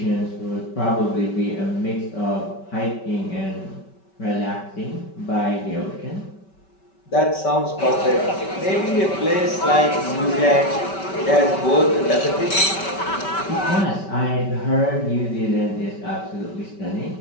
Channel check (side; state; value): right; late; 5.2 ms